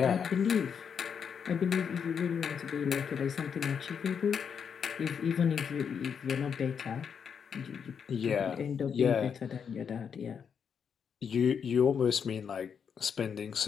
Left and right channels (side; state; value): right; quieter; 7.0 dB